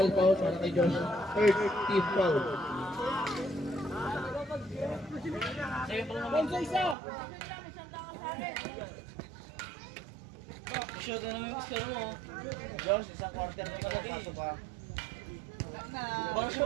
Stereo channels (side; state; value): left; drops out; at 7.0 s